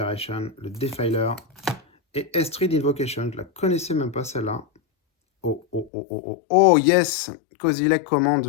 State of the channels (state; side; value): drops out; right; at 5.9 s